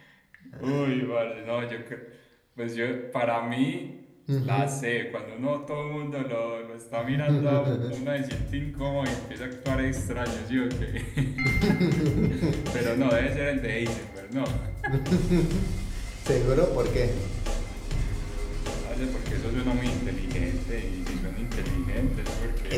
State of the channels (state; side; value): identical; both; correlation 1.00